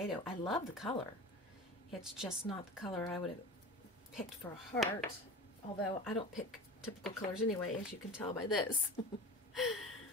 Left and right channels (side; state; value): both; normal; correlation 0.33